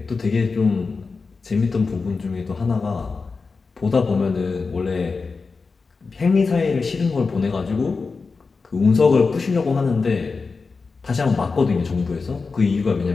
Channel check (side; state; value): right; quieter; 4.4 dB